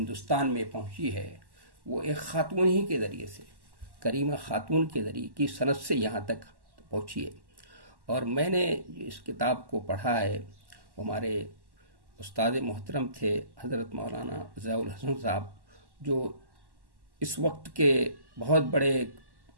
میں پہنچی ہے، وہ ایک خاتون ہی کے ذریعے سے، کریمہ خاتون کے ذریعے کی سند سے یہاں تک پہنچی ہے۔ اور میں نے اس کتاب کو پڑھا ہے، ہمارے استاد محترم تھے حضرت مولانا ضیاء الحسن صاحب، جو اس وقت کے بہت بڑے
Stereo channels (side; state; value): left; late; 1.1 ms